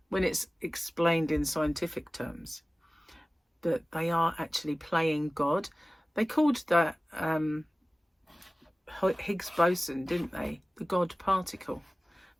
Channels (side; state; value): both; normal; correlation 0.97